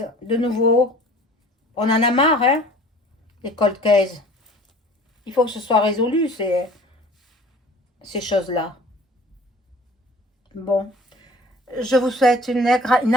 de nouveau. On en a marre, hein, les cold cases. Il faut que ce soit résolu, ces choses-là. Bon, je vous souhaite une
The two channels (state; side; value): normal; both; correlation 0.47